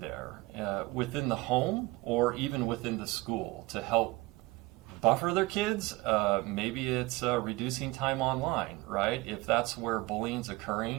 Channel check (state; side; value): quieter; left; 21.8 dB